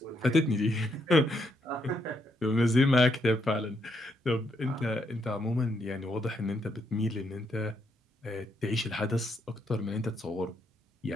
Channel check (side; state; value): both; normal; correlation 0.77